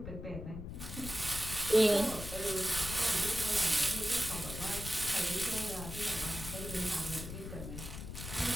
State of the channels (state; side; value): noise; left; rumble, 9 dB below the sound